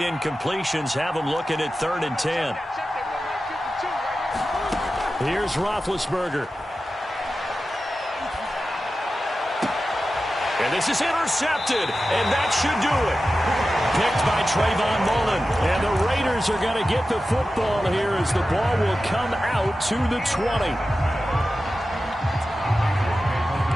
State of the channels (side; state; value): both; normal; correlation 0.93